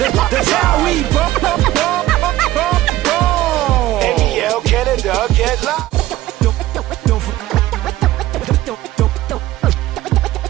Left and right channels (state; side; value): quieter; left; 15.4 dB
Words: how we ball. NBL Canada, get locked.